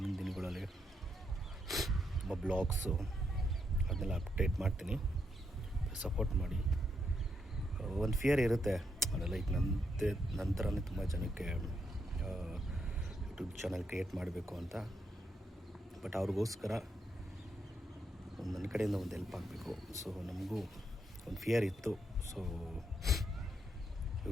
ದಿನಗಳಲ್ಲಿ ತುಂಬ ಬ್ಲಾಗ್ಸು ಅದನ್ನೆಲ್ಲ ಅಪ್ಡೇಟ್ ಮಾಡ್ತೀನಿ. ಸಪೋರ್ಟ್ ಮಾಡಿ. ಒಂದು ಫಿಯರ್ ಇರುತ್ತೆ, ಅದೆಲ್ಲ ಈಗ ನನ್ನ ಥರನೇ ತುಂಬ ಜನಕ್ಕೆ ಯೂಟ್ಯೂಬ್ ಚಾನಲ್ ಕ್ರಿಯೇಟ್ ಮಾಡಬೇಕು ಅಂತ. ಬಟ್ ಅವ್ರಿಗೋಸ್ಕರ ನನ್ನ ಕಡೆಯಿಂದ ಒಂದು ಹೆಲ್ಪ್ ಆಗಬೇಕು. ಸೊ ನಮಗೂ ಒಂದು ಫಿಯರ್ ಇತ್ತು. ಸೊ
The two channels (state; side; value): normal; both; correlation 0.79